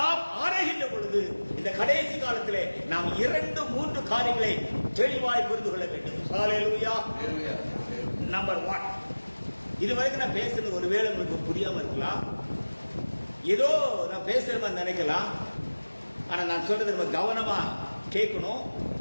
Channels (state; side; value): inverted; both; correlation -1.00